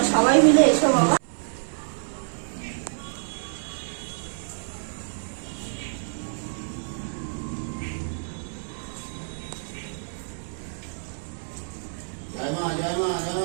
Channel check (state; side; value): silent; left; 60 dB below the other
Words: সবাই মিলে এসো বাবা।